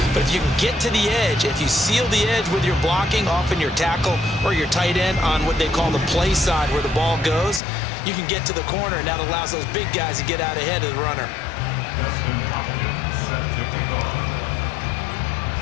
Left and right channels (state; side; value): drops out; right; at 7.6 s